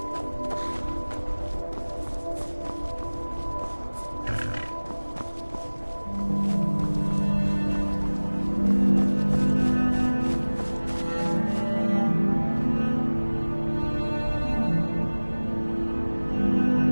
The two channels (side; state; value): both; inverted; correlation -1.00